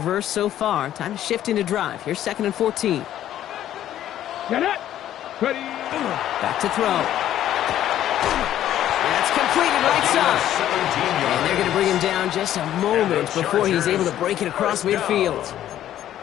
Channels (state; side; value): quieter; right; 11.9 dB